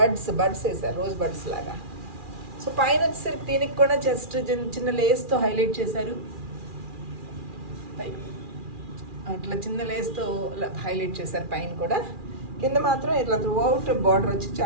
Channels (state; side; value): late; left; 2.4 ms